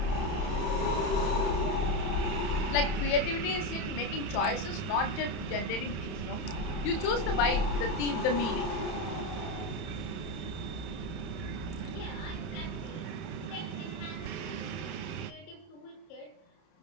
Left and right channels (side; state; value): right; late; 31 ms